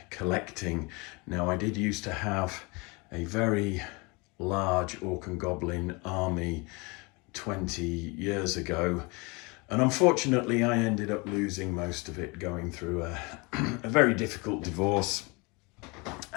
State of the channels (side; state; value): right; quieter; 27.8 dB